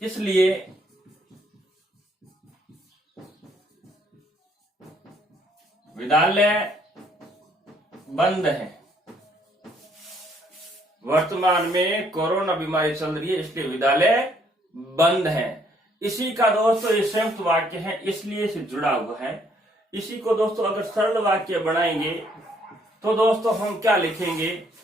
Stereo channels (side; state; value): both; normal; correlation 0.67